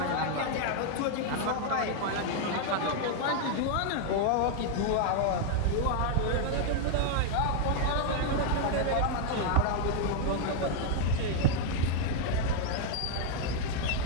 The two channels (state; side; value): different; both; correlation 0.00